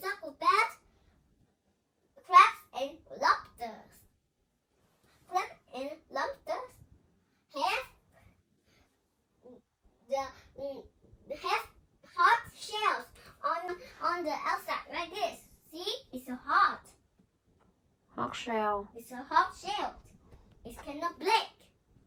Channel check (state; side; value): identical; both; correlation 1.00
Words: about crabs and lobsters. Crabs and lobsters have hard shells on the outside like this. See, it's a hard. Hard shell. It's a hard shell. It cannot break.